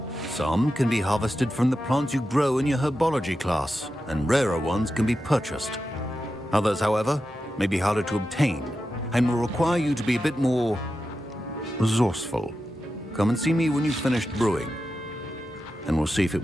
Some can be harvested from the plants you grow in your herbology class, and rarer ones can be purchased. Others, however, may be harder to obtain, and will require you to be a bit more resourceful. Come and see me when you've finished brewing, and we'll see if it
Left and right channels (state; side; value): normal; both; correlation 0.90